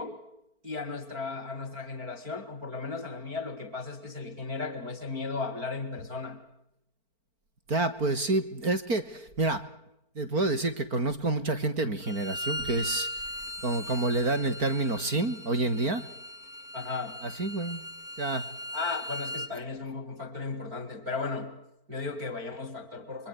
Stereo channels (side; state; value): left; late; 4.4 ms